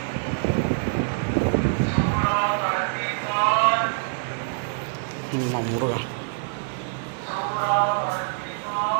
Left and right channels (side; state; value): left; silent; 62 dB below the other